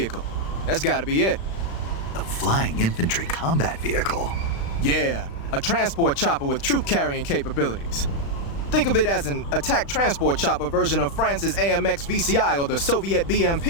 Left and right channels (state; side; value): late; right; 35 ms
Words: That's gotta be it. A flying infantry combat vehicle? Yeah, a transport chopper with troop-carrying capabilities. Think of it as an attack transport chopper version of France's AMX VCI or the Soviet